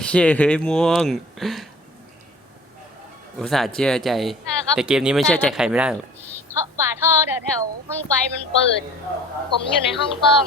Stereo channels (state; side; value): normal; both; correlation 0.47